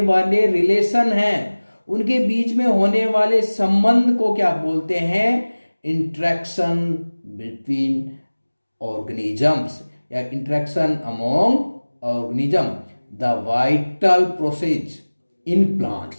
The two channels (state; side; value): inverted; both; correlation -1.00